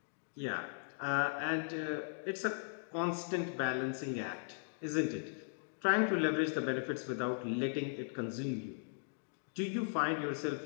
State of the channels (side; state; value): right; silent; digital silence